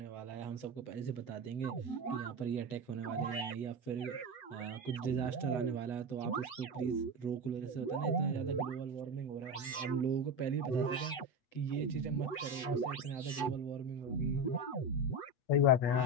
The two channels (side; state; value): right; late; 7.9 ms